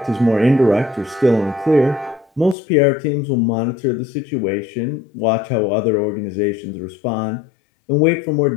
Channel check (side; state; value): right; drops out; at 2.6 s